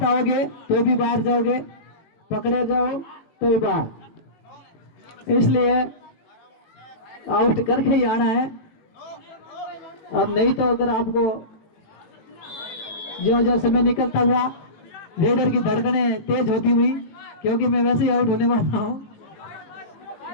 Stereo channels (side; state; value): right; late; 18 ms